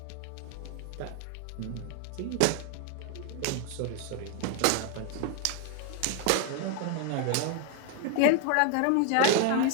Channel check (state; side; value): different; both; correlation 0.00